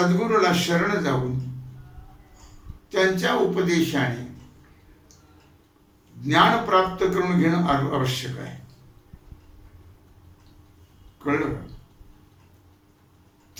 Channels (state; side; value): identical; both; correlation 1.00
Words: शरण जाऊन त्यांच्या उपदेशाने ज्ञान प्राप्त करून घेणं आवश्यक आहे. कळलं का?